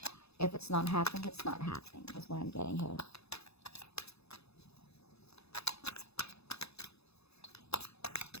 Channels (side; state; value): right; late; 0.79 ms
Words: if it's not happening, it's not happening. That's what I'm getting here.